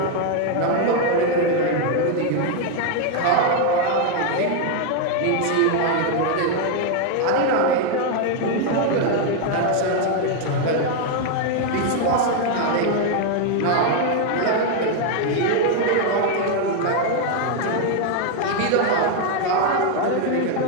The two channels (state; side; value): different; both; correlation 0.01